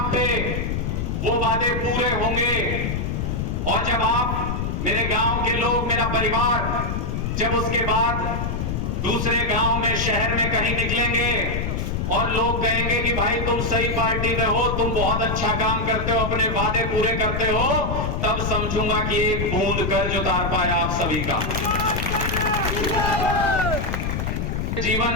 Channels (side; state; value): left; noise; rumble, 1 dB below the sound